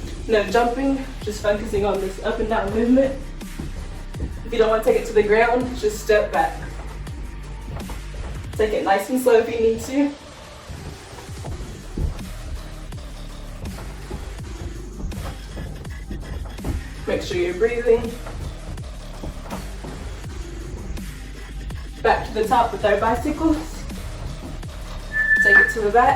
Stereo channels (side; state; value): both; identical; correlation 1.00